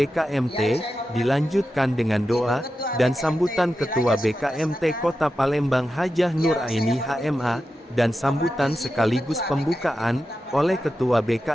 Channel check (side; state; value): both; normal; correlation 0.91